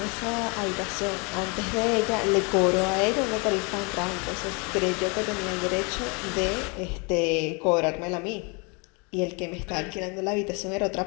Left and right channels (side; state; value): right; quieter; 31.7 dB